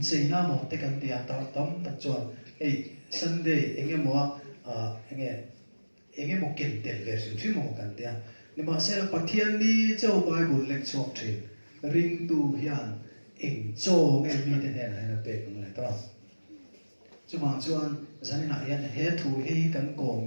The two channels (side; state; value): both; inverted; correlation -1.00